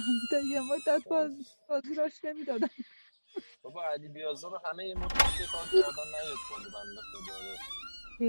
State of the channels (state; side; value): inverted; both; correlation -1.00